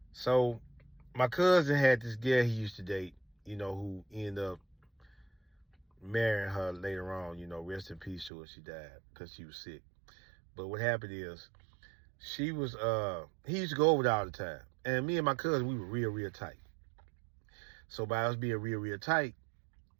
So my cousin had this girl he used to date, you know, who ended up marrying her later on, you know, rest in peace to her. She died because she was sick. But what happened is, she was, he used to go over there all the time. And me and my cousin, we were real tight. So by us being real tight,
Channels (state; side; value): drops out; left; at 8.3 s